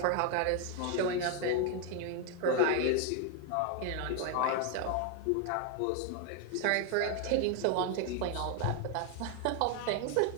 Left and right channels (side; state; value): both; different; correlation 0.01